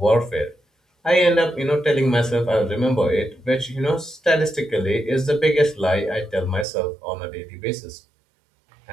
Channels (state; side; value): drops out; left; at 6.7 s